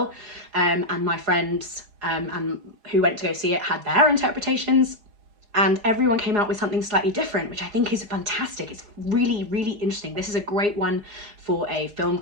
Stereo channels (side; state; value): left; late; 4.8 ms